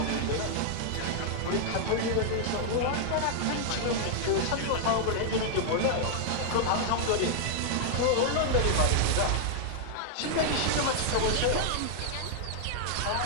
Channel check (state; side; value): different; both; correlation 0.00